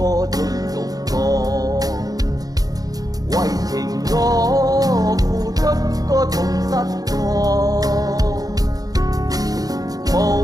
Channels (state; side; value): late; left; 0.18 ms